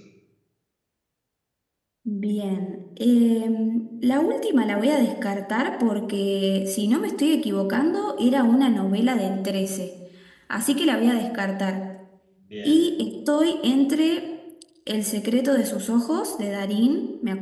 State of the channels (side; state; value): both; identical; correlation 1.00